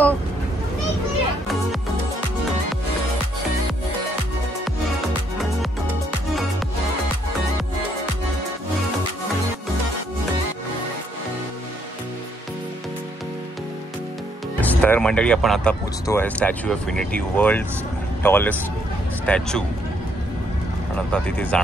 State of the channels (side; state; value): both; normal; correlation 0.71